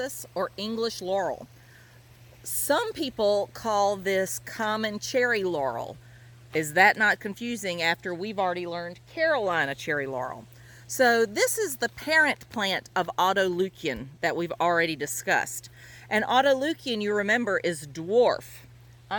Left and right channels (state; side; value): identical; both; correlation 1.00